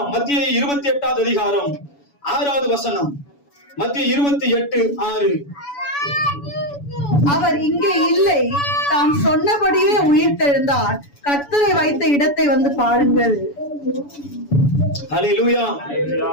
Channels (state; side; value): late; right; 7.0 ms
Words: மத்திய 28 அதிகாரம் 6வது வசனம். மத்திய 28:6. அவர் இங்கே இல்லை, தாம் சொன்னபடியே உயிர்த்தெழுந்தார். கர்த்தரை வைத்த இடத்தை வந்து பாருங்கள். அல்லேலூயா.